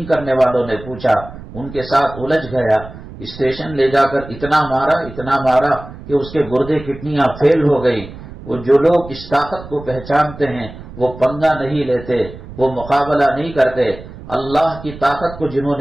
کرنے والوں نے پوچھا، ان کے ساتھ الجھ گیا، اسٹیشن لے جا کر اتنا مارا کہ اس کے گردے کڈنیاں فیل ہو گئی۔ وہ جو لوگ اس طاقت کو پہچانتے ہیں وہ پنگا نہیں لیتے، وہ مقابلہ نہیں کرتے۔ اللہ کی طاقت کو جنہوں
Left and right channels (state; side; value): noise; right; rumble, 15 dB below the sound